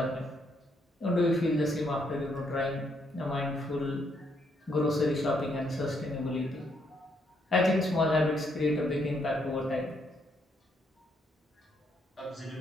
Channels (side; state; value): both; normal; correlation 0.73